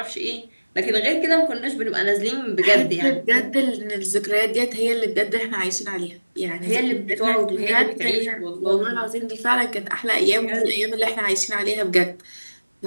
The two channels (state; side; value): inverted; both; correlation -1.00